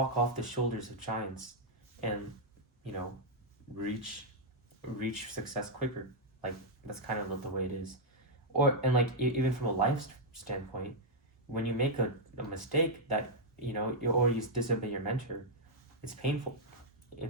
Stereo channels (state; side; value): normal; both; correlation -0.04